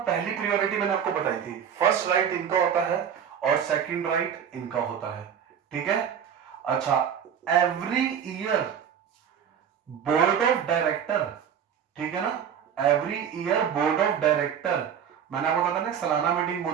पहली प्रायोरिटी मैंने आपको बताई थी, फर्स्ट राइट इनका होता है और सेकंड राइट इनका होता है, ठीक है। अच्छा every year board of director, ठीक है ना, every year board of director, मैंने आपको बताया ना सालाना मीटिंग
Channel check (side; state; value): left; quieter; 8.3 dB